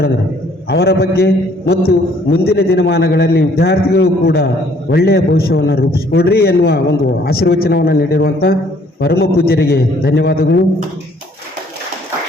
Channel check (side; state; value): both; normal; correlation 0.61